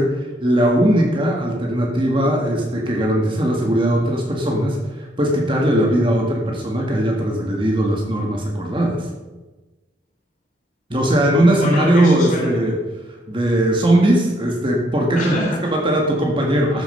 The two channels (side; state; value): both; normal; correlation 0.71